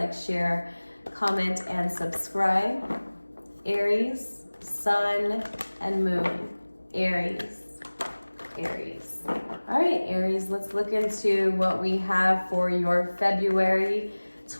share, comment, and subscribe. Aries, Sun, and Moon. Aries. All right, Aries, let's look into what we have for your February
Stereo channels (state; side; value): inverted; both; correlation -1.00